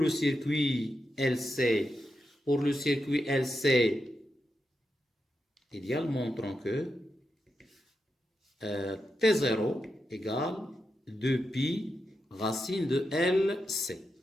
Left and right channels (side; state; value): both; normal; correlation 0.87